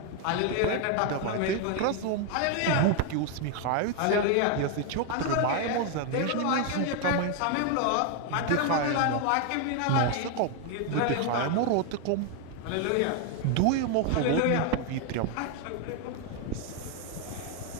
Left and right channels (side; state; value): both; different; correlation 0.01